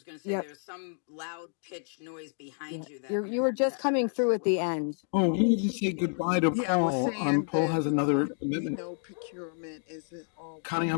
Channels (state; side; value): silent; right; 57 dB below the other